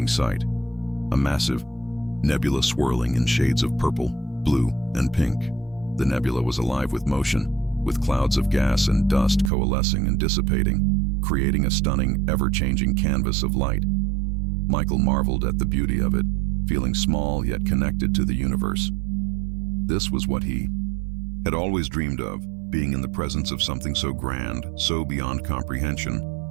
sight. A massive, nebula swirling in shades of purple, blue, and pink. The nebula was alive with motion, with clouds of gas and dust coalescing and dissipating, creating a stunning, ever-changing canvas of light. Michael marveled at the beauty of it, feeling small yet connected to the universe. This was what he had always dreamed of, being in the presence of something so grand, so beyond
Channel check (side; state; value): left; drops out; at 9.5 s